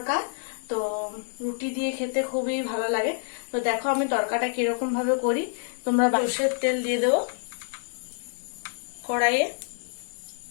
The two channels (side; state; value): right; silent; digital silence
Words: তো রুটি দিয়ে খেতে খুবই ভালো লাগে। তো দেখো আমি তড়কাটা কিরকম ভাবে করি। তোমরা সরষের তেল দিয়ে দেবো কড়াইয়ে।